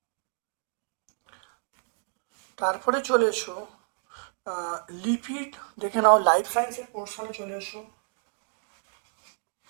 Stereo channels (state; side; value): silent; left; 58 dB below the other